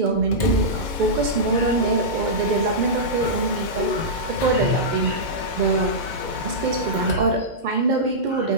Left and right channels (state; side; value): late; left; 2.1 ms